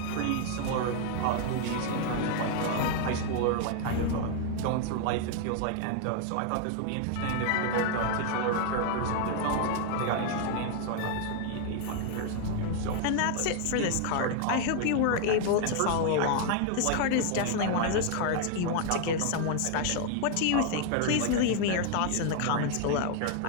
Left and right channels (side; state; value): both; different; correlation 0.00